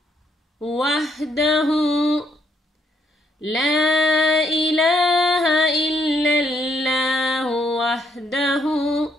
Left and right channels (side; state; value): both; normal; correlation 0.73